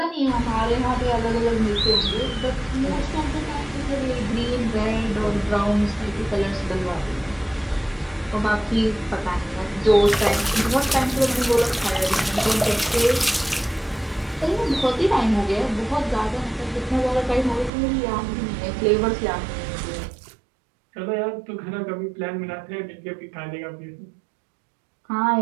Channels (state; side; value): drops out; left; at 17.7 s